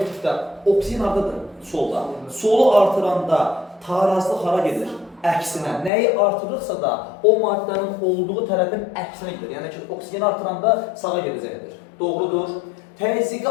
etdikdə, oksigen haradadır? Solda. Solu artıranda tarazlıq hara gedir? Əksinə. Nəyi artırırsa da o maddənin olduğu tərəfin əksinə gedir. Yəni ki, oksigeni artıranda sağa gedəcəkdir. Doğrudur. Təzyiqi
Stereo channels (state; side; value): drops out; right; at 5.9 s